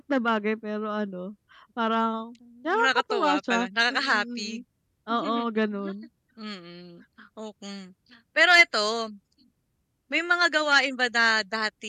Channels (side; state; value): both; identical; correlation 1.00